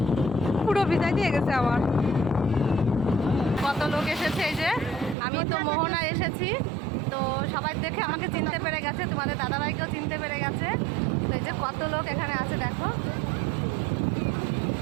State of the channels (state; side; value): drops out; left; at 5.2 s